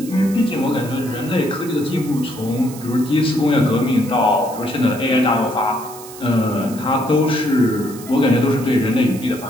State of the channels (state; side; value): noise; right; hiss, 16 dB below the sound